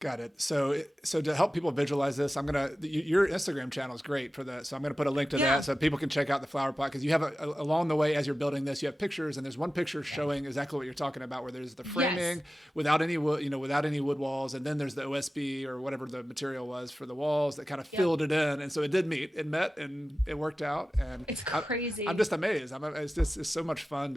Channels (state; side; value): normal; both; correlation 0.94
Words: it. So to help people visualize this, your Instagram channel is great for that. So I'm going to put a link to that so people can check out the flower pot, because you have along the way as you're building this, you have pictures, and there's one picture showing exactly what you're talking about, where there's the framing without any wood, without any wood walls, and then there's the OSB or whatever the material was for the walls that kind of filled it in, and so it did meet. It met, and it worked out. And it's crazy. I'm just amazed. It's so much fun